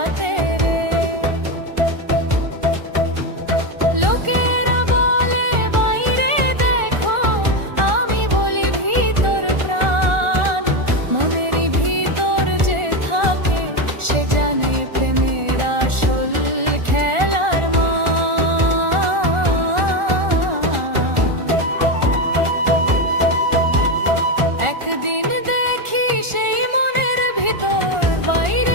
রে লোকেরা বলে বাইরে দেখো আমি বলি ভিতর প্রাণ মনের ভিতর যে থাকে সে জানে প্রেমের আসল খেলার একদিন দেখি সেই মনের ভিতর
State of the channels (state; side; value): late; left; 1.4 ms